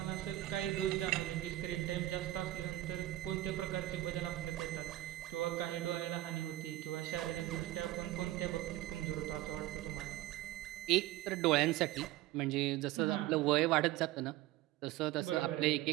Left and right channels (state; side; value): quieter; left; 16.0 dB